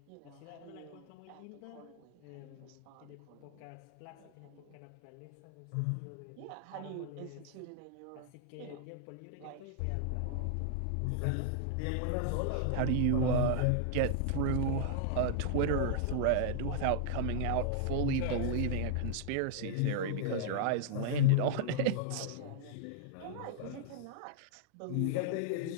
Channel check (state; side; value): different; both; correlation -0.01